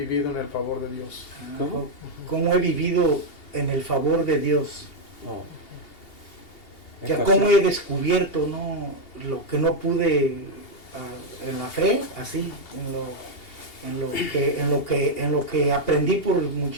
en el favor de Dios? ¿Cómo he vivido en el favor de Dios? Oh. ¿Cómo he descubierto, ¿no? Lo que no pude en la fe, así, en lo que aprendí por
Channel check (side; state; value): right; late; 2.8 ms